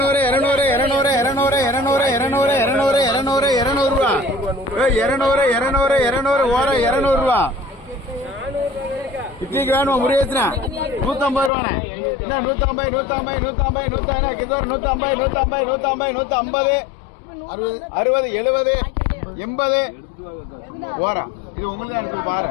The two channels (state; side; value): drops out; right; at 11.5 s